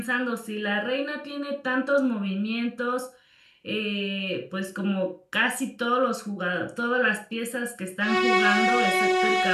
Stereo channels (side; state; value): both; identical; correlation 1.00